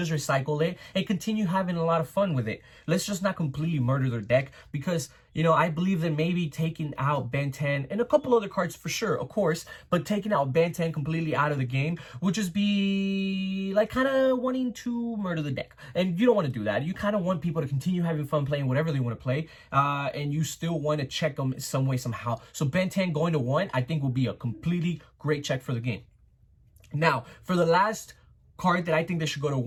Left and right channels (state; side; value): identical; both; correlation 1.00